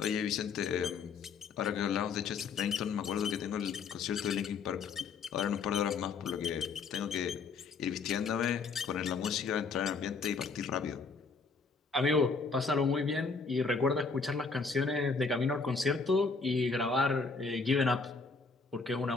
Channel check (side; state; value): right; quieter; 4.8 dB